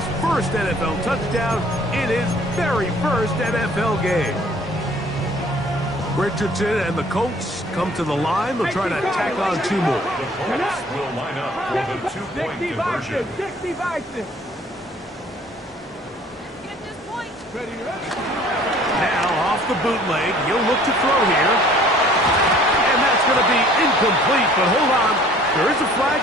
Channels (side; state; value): both; normal; correlation 0.54